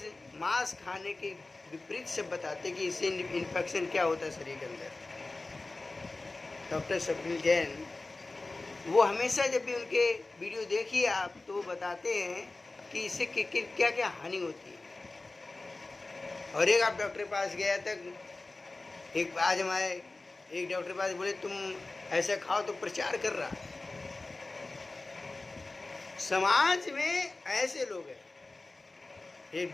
मांस खाने के विपरीत से बताते कि इससे इन्फेक्शन क्या होता है शरीर के अंदर। डॉक्टर स्वप्निल जैन, वो हमेशा जब भी उनके वीडियो देखिए आप, तो वो बताते हैं कि इससे क्या क्या हानि होती है। और एक आप डॉक्टर के पास गया तक, एक आज हमारे एक डॉक्टर के पास बोले तुम ऐसा खाओ, तो प्रचार कर रहा। समाज में ऐसे लोग हैं, एक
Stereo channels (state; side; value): quieter; right; 3.2 dB